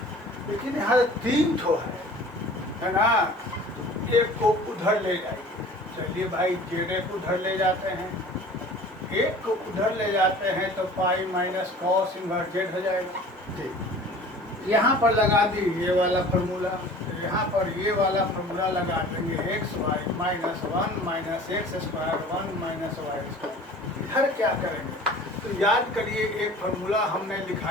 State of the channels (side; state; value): both; normal; correlation 0.44